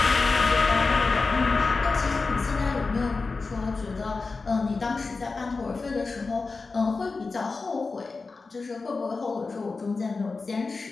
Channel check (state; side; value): quieter; right; 4.1 dB